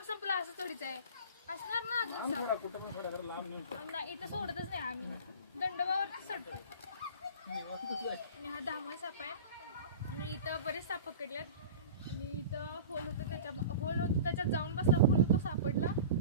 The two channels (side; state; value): both; inverted; correlation -0.36